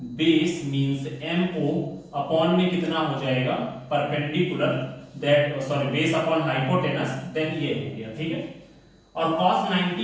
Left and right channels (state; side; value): identical; both; correlation 1.00